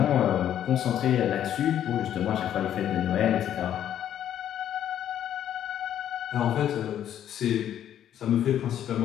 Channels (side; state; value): right; quieter; 10.5 dB